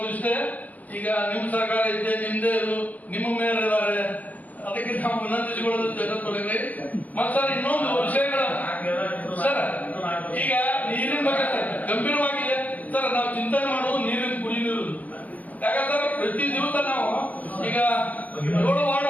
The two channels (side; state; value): right; late; 0.079 ms